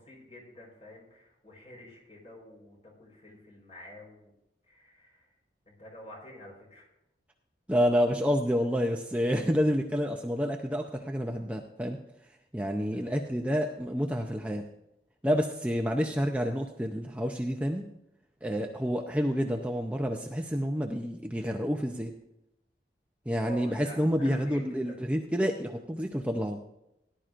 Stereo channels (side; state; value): both; normal; correlation 0.87